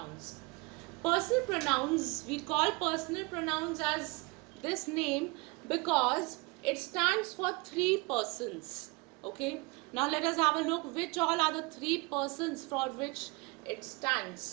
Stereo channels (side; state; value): left; quieter; 26.7 dB